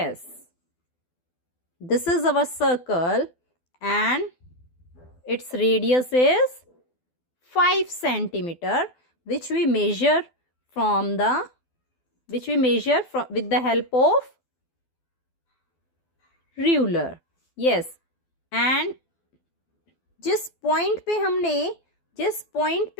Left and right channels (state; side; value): late; right; 12 ms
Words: this is our circle and its radius is 5 centimeter, which we measure with the help of ruler. Yes, and जिस point पे